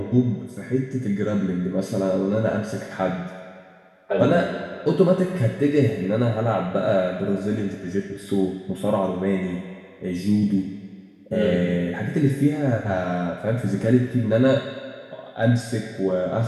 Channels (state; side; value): identical; both; correlation 1.00